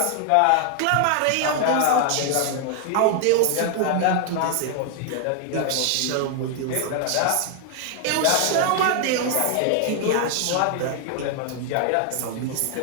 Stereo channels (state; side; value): different; both; correlation 0.00